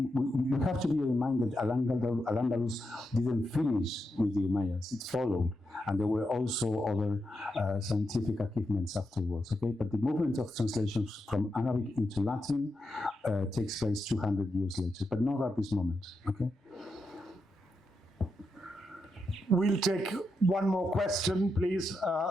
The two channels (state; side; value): normal; both; correlation 0.85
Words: have to be reminded Al-Andalus didn't finish with the Umayyads, it followed. And there were also other scientific achievements afterwards, okay? But the movement of translations from Arabic into Latin takes place 200 years later, but not at this moment, okay? We'll take one more question, please.